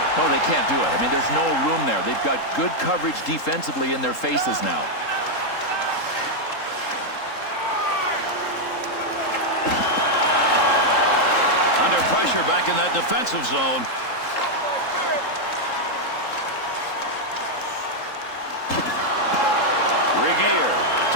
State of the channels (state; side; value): late; right; 3.8 ms